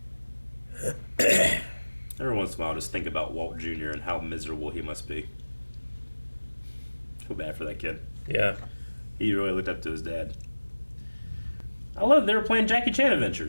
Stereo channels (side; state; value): both; inverted; correlation -1.00